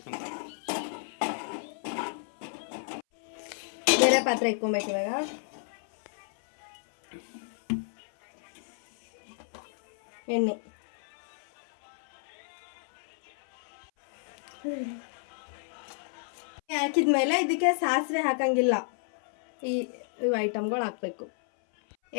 ಬೇರೆ ಪಾತ್ರೆ ಇಟ್ಕೊಬೇಕು. ಇವಾಗ ಎಣ್ಣೆ ಹಾಕಿದ್ಮೇಲೆ ಇದಕ್ಕೆ ಸಾಸಿವೆ ಹಾಕಂಗಿಲ್ಲ. ಇವು ಐಟಮ್ಗಳು ಹಾಕಬೇಕು.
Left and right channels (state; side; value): silent; right; 57 dB below the other